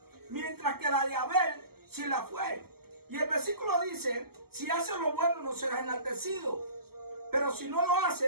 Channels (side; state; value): left; late; 0.95 ms